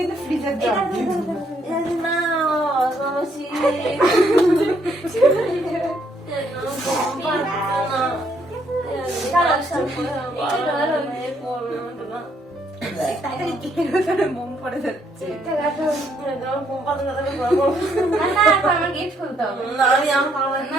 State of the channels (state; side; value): normal; both; correlation 0.70